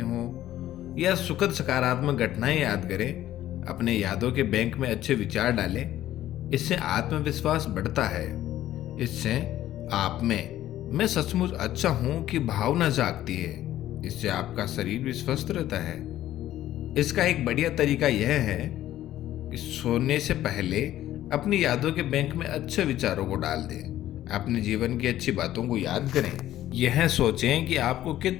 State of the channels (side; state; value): right; quieter; 13.3 dB